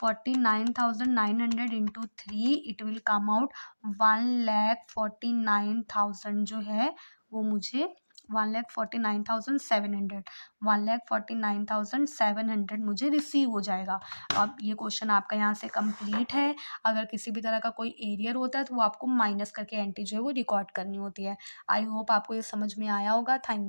into 3, it will come out 1,49,000 जो है वो मुझे 1,49,700 1,49,700 मुझे रिसीव हो जाएगा। अब ये क्वेश्चन आपका यहाँ से कंप्लीट है। अगर किसी भी तरह का कोई एरियर होता है तो वो आपको माइनस करके एंट्री जो है वो रिकॉर्ड करनी होती है। आई होप आपको ये समझ में आया होगा।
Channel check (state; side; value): inverted; both; correlation -1.00